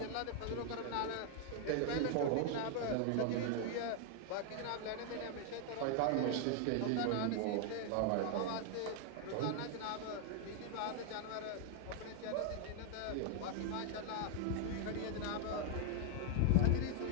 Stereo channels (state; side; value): different; both; correlation 0.00